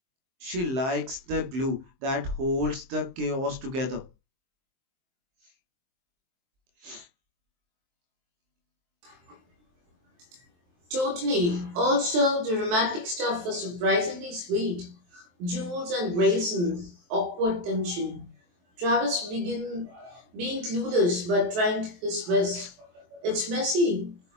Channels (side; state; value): left; late; 23 ms